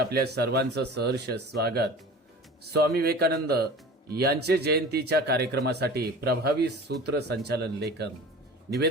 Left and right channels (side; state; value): both; normal; correlation 0.39